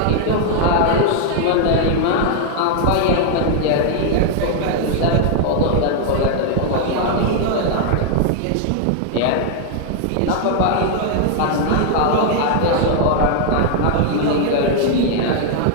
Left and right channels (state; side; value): different; both; correlation 0.00